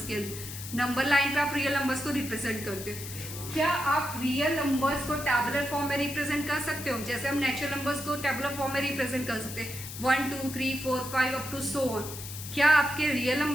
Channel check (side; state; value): left; noise; hiss, 10 dB below the sound